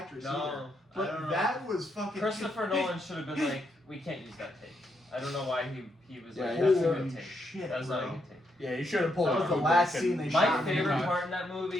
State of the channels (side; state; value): both; normal; correlation 0.79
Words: actress No, either. I don't But know. that was fucking. Christopher Nolan should have been like, we can't use that take. I don't know why he was Yeah, like, that's that's a Holy good take. shit, That's not a bro. good take. Yeah, you should have pulled That it was the Kubrick last and- scene they My shot. favorite part in that